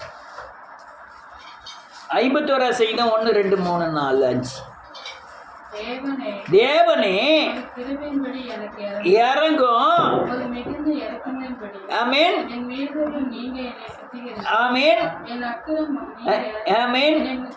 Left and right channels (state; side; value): identical; both; correlation 1.00